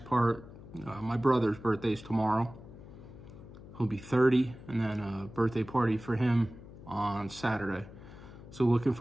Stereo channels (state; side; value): noise; left; hum, 17 dB below the sound